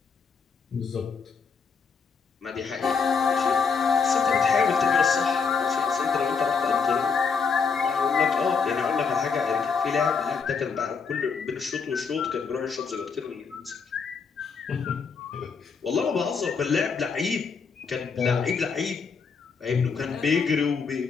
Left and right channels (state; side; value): quieter; right; 5.5 dB